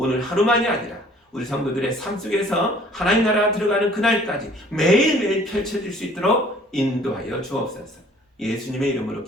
하루만이 아니라 우리 성도들의 삶 속에서 하나님 나라가 들어가는 그날까지 매일매일 펼쳐질 수 있도록 인도하여 주옵소서. 예수님의 이름으로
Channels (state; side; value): normal; both; correlation 0.55